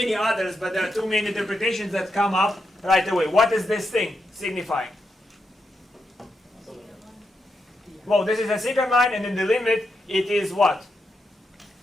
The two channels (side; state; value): both; normal; correlation 0.84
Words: others, but there are two main interpretations that come up right away. What is this thing signifying? Well, this is a secant line, and in the limit, it is what?